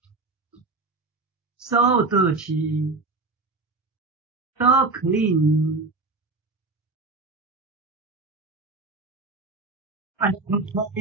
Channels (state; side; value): quieter; left; 3.7 dB